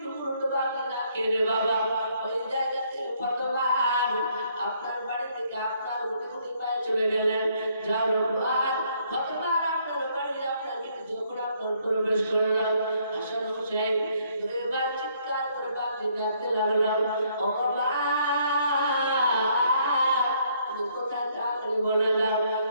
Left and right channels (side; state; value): both; inverted; correlation -0.68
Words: টুকরো বাদে না খেয়ে বাবা ওই জায়গা থেকে ফাতেমা আপনার বাড়ি থেকে আপনার রুটি পায়ে চলে গেলেন যার পর ফাতেমা আপনার বাড়ি আপনার গেটে যখন আপনার প্রবেশ করলেন হাসান হোসেন দুইবার চিৎকার করে বাদে ডাকতে লাগলাম ও মা তুমি কোথায় যাবে বলে দাও